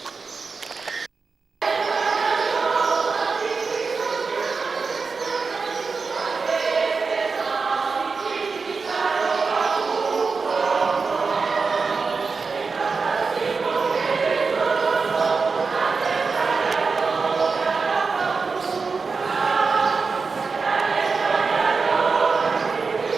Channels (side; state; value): left; quieter; 4.7 dB